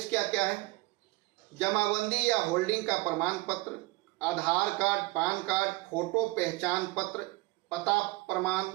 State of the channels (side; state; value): left; quieter; 22.1 dB